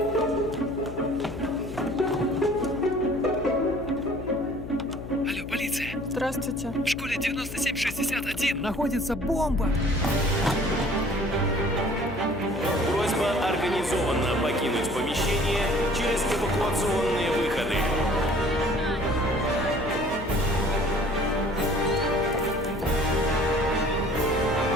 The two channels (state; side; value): noise; left; hum, 11 dB below the sound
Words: полиция! Здравствуйте. В школе 9761 Находится бомба! Просьба организованно покинуть помещение через эвакуационные выходы.